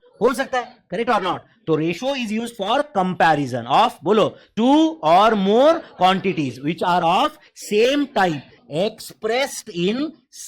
हो सकता है. करेक्ट और नॉट? तो ratio is used for comparison of, बोलो, two or more quantities which are of same type expressed in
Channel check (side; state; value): both; identical; correlation 1.00